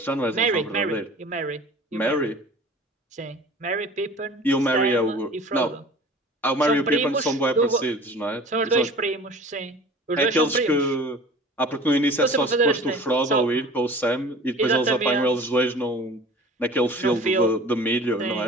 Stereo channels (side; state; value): both; normal; correlation 0.43